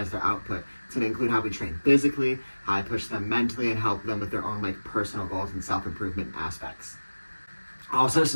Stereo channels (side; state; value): both; inverted; correlation -1.00